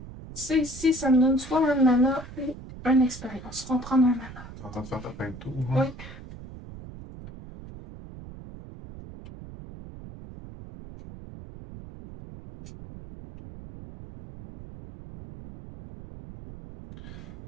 Ça ici, ça me donne soit un mana ou une expérience. On va prendre un mana. T'es en train de faire ta fin de tour. Hein? Oui.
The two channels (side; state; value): right; noise; rumble, 15 dB below the sound